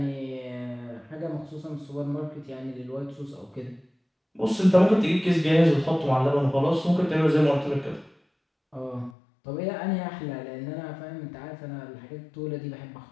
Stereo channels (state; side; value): drops out; right; at 9.2 s